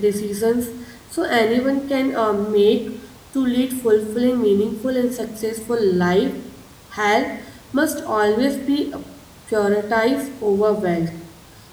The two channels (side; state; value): both; identical; correlation 1.00